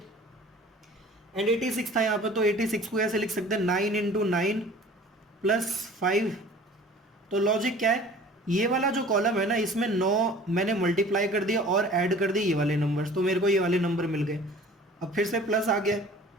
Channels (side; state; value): both; normal; correlation 0.46